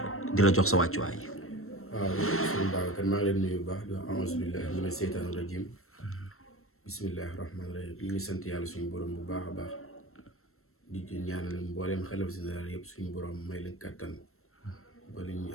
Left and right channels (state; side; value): late; right; 0.62 ms